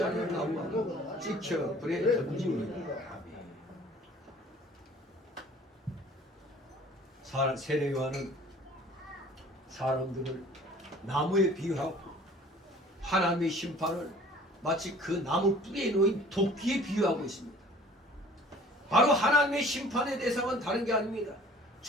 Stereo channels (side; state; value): both; normal; correlation 0.50